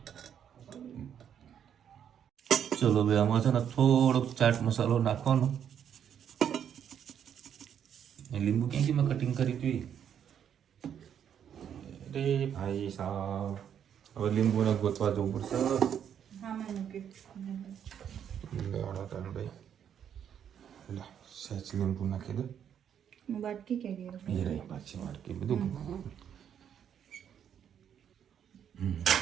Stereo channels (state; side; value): quieter; left; 8.8 dB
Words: ચલો ભાઈ આમાં છે ને થોડોક ચાટ મસાલો નાખવાનો. લીંબુ ક્યાંથી મેં કટિંગ કરી હતી અરે ભાઈ સાહેબ, હવે લીંબુને ગોતવા જવું પડશે. સહેજ લીંબુ નાખી દો. બાટકી કે એ રહી પાછી વાટકી બધું